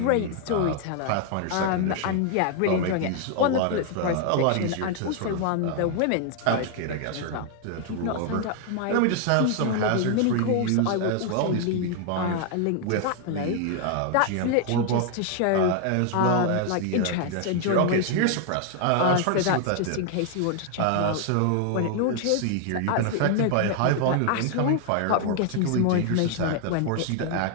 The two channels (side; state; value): both; different; correlation 0.00